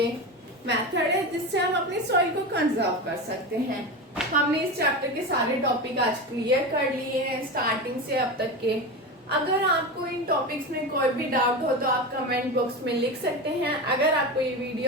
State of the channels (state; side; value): normal; both; correlation 0.23